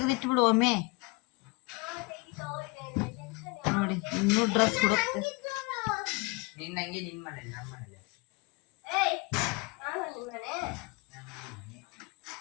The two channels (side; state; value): right; quieter; 26.7 dB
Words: ಬಿಡು ಒಮ್ಮೆ ನೋಡಿ. ಇನ್ನೂ ಡ್ರೆಸ್ ಹುಡುಕ್ತೆ. ನಿನ್ನಂಗೆ ನಿನ್ ಮನೆ ನಮ್ಮ ಮನೆ